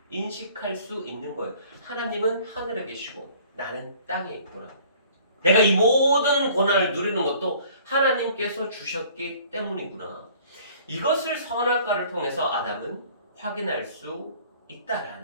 인식할 수 있는 거예요. 하나님은 하늘에 계시고 나는 땅에 있구나. 내가 이 모든 권한을 누리는 것도 하나님께서 주셨기 때문이구나. 이것을 선악과를 통해서 아담은 확인할 수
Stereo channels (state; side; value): inverted; both; correlation -0.53